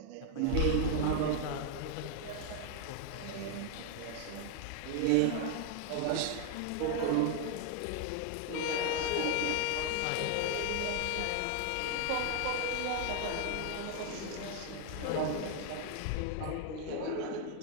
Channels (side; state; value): both; different; correlation 0.01